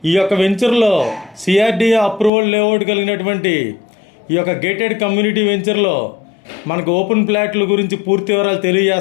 ఈ యొక్క వెంచర్లో సిఆర్డిఏ అప్రూవల్ లేఅవుట్ కలిగినటువంటి ఈ యొక్క గేటెడ్ కమ్యూనిటీ వెంచర్లో మనకు ఓపెన్ ప్లాట్ల గురించి పూర్తి వివరాలు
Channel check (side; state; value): right; drops out; at 2.3 s